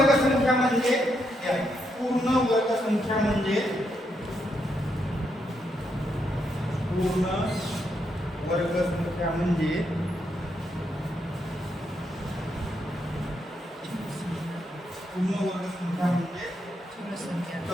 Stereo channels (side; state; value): both; normal; correlation 0.79